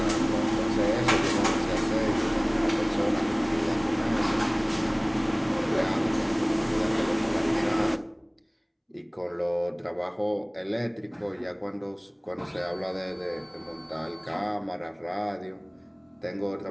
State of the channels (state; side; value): identical; both; correlation 1.00